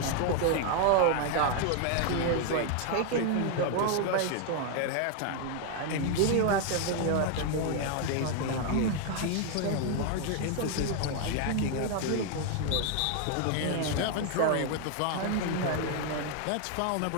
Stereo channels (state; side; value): different; both; correlation 0.00